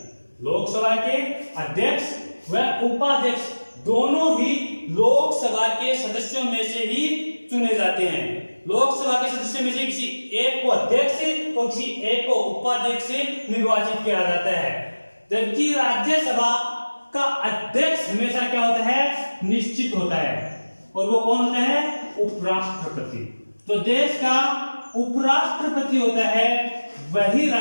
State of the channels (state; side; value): inverted; both; correlation -1.00